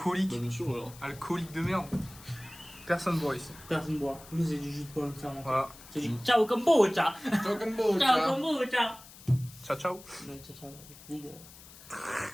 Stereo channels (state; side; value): noise; left; hiss, 19 dB below the sound